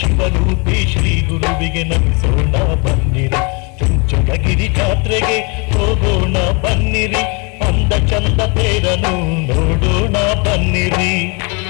ಶಿವರೂಪಿ ಶ್ರೀ ಗುರುವಿಗೆ ನಮಿಸೋಣ ಬನ್ನಿರಿ. ಚುಂಚನಗಿರಿ ಜಾತ್ರೆಗೆ ಹೋಗೋಣ ಬನ್ನಿರಿ, ಅಂದ ಚಂದ ತೇರನು ನೋಡೋಣ ಬನ್ನಿರಿ.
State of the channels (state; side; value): quieter; right; 30.9 dB